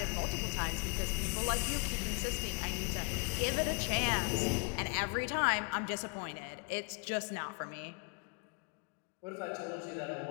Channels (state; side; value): quieter; right; 32.5 dB